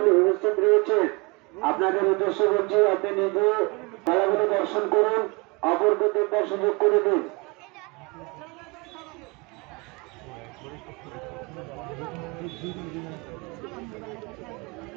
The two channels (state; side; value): quieter; left; 28.5 dB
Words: উপস্থিত রয়েছে, আপনাদের উদ্দেশ্য বলছি, আপনি নিজে খেলাগুলো দর্শন করুন, অপরকে দেখার সুযোগ করে দিন।